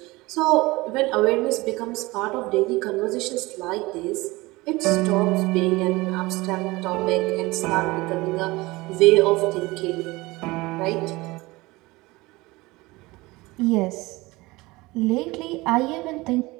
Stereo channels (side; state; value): left; quieter; 21.6 dB